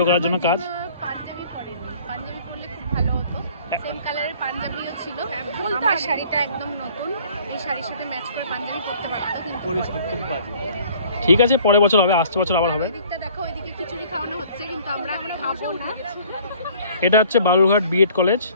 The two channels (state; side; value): inverted; both; correlation -0.54